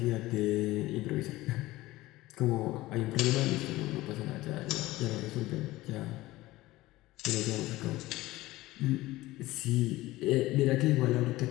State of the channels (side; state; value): right; quieter; 18.1 dB